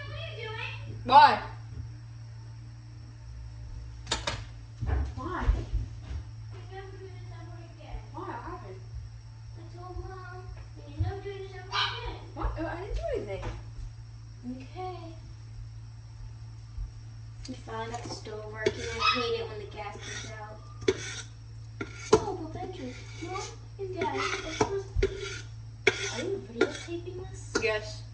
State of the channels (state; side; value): identical; both; correlation 1.00